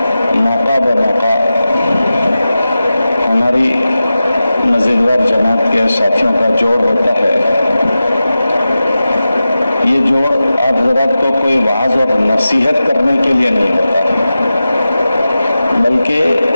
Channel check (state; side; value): inverted; both; correlation -0.93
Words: मौका ब मौका हमारी मज़ीदवार जमात के साथियों का जोड़ होता है। ये जोड़ आप ज़रा को कोई वाज और नसीहत करने के लिए नहीं होता, बल्कि